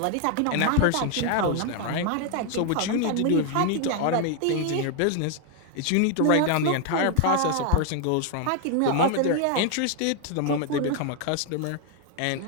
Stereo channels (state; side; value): different; both; correlation 0.00